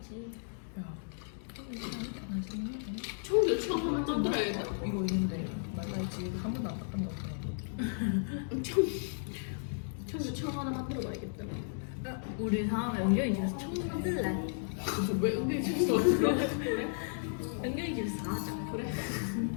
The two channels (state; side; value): silent; right; digital silence